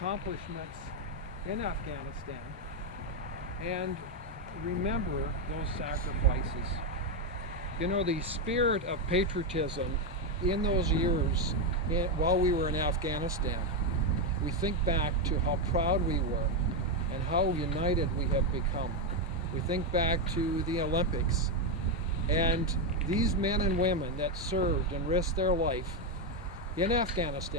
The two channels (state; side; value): normal; both; correlation 0.05